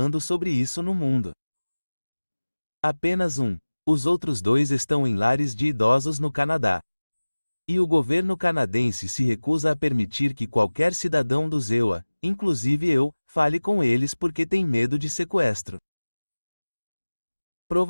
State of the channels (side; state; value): both; inverted; correlation -1.00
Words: sobre isso no mundo. Apenas um. Os outros 2 estão em lares de idosos no Canadá. E o governo canadense se recusa a permitir que qualquer cidadão dos EUA, inclusive eu, fale com eles porque tem medo de sequestro.